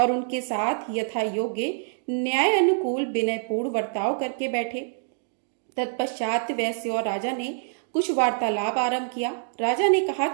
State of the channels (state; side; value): silent; left; digital silence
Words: उनके साथ यथा योग्य न्याय अनुकूल विनयपूर्ण वर्ताव करके बैठे। तत्पश्चात वैश्य और राजा ने कुछ वार्तालाप आरंभ किया। राजा ने कहा